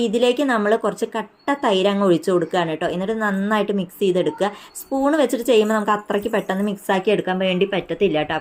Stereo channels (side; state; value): both; identical; correlation 1.00